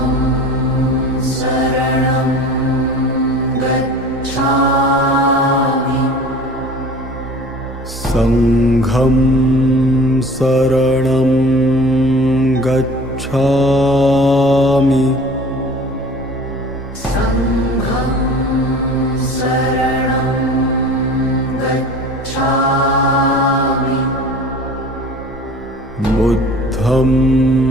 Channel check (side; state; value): both; normal; correlation 0.43